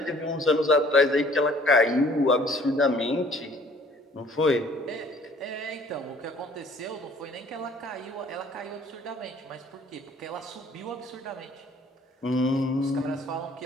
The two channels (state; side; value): normal; both; correlation 0.56